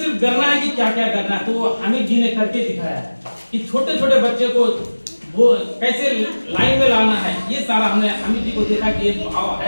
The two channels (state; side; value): inverted; both; correlation -1.00